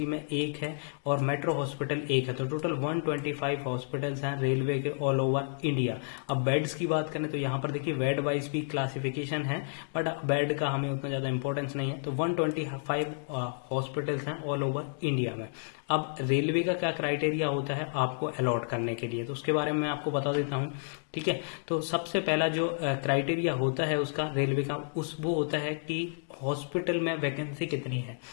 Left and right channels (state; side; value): silent; right; digital silence